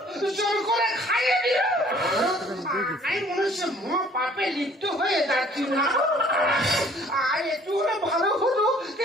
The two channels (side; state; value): both; normal; correlation 0.56